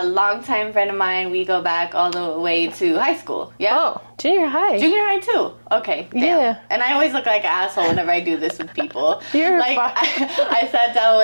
longtime friend of mine. We go back all the way to high school. Yeah. Oh, junior high. Junior high too. Okay. Damn. Yeah. And I always look like an asshole whenever I do this with people. You're like fine. I sat down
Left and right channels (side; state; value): both; inverted; correlation -1.00